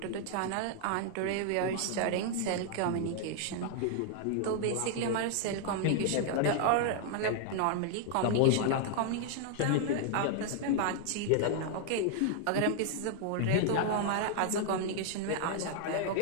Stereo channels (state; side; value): different; both; correlation 0.00